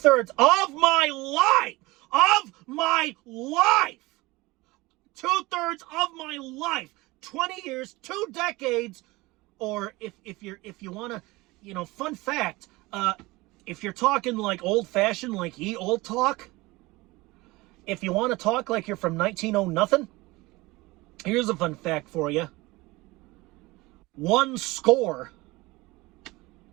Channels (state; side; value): quieter; left; 21.6 dB